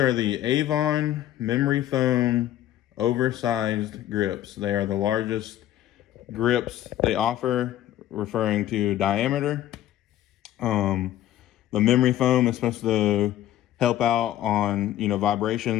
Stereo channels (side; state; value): right; quieter; 12.8 dB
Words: the Avon memory foam oversized grips. They are the largest grips they offer, referring to diameter. The memory foam is supposed to help out on, you know,